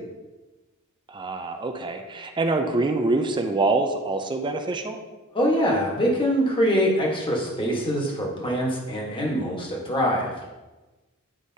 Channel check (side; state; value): both; normal; correlation 0.48